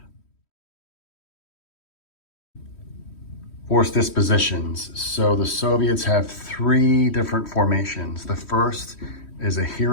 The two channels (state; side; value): late; right; 3.1 ms